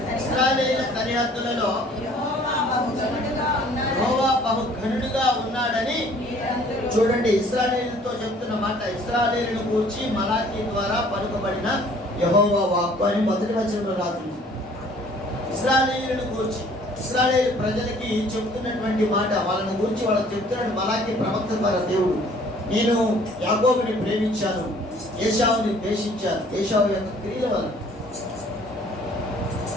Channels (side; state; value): both; normal; correlation 0.56